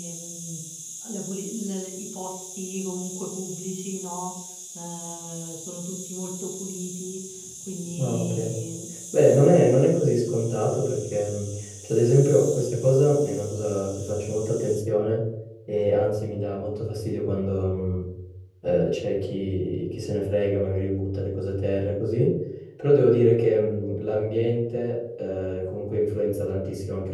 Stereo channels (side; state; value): both; identical; correlation 1.00